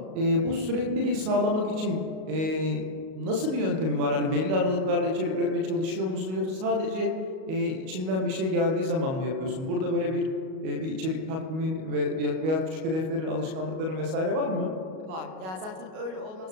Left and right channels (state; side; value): late; left; 38 ms